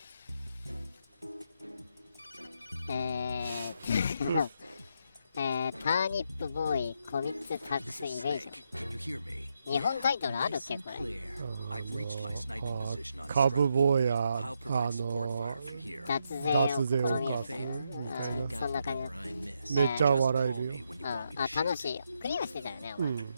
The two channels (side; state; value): both; inverted; correlation -0.80